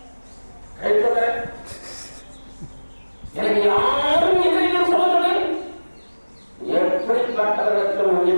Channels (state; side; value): inverted; both; correlation -1.00